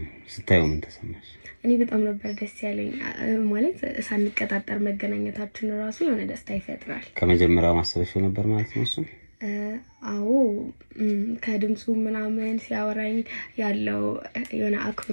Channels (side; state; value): both; inverted; correlation -1.00